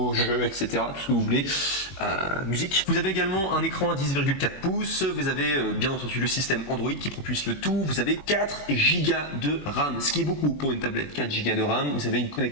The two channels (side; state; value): right; late; 21 ms